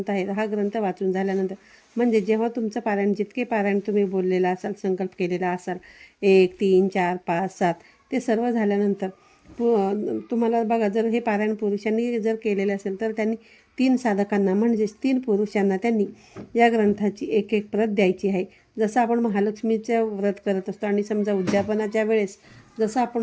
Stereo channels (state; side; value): identical; both; correlation 1.00